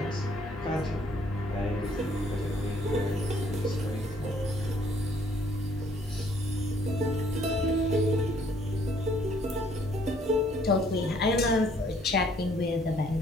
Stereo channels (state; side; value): normal; both; correlation 0.63